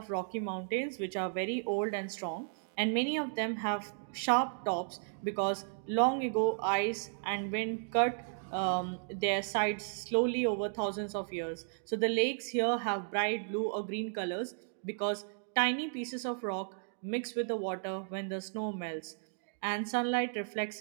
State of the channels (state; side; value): silent; left; digital silence